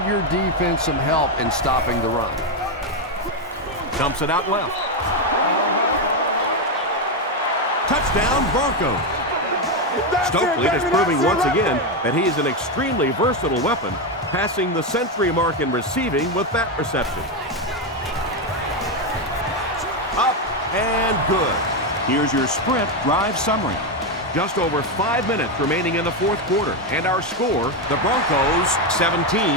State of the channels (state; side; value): normal; both; correlation 0.08